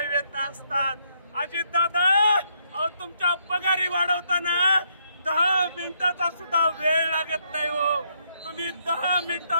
वेदना असतात. अजितदादा अहो तुमच्या पगारी वाढवताना 10 मिनिटाचा सुद्धा वेळ लागत नाही हो. तुम्ही 10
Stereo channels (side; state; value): both; inverted; correlation -0.74